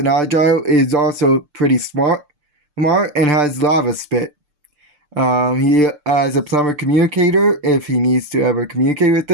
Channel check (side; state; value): left; late; 6.7 ms